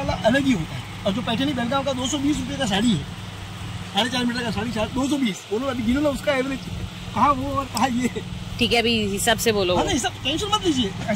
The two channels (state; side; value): identical; both; correlation 1.00